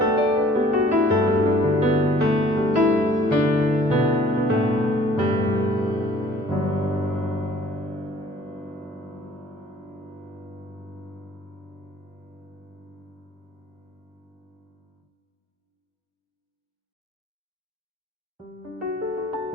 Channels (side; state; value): both; normal; correlation 0.53